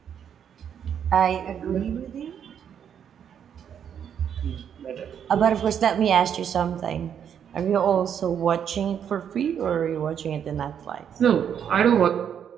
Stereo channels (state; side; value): quieter; left; 8.5 dB